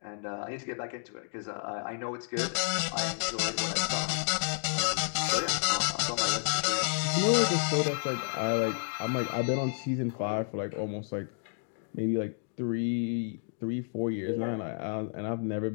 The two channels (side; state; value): right; silent; digital silence